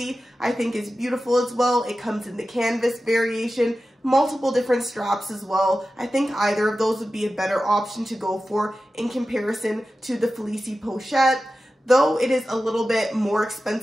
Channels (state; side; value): normal; both; correlation 0.93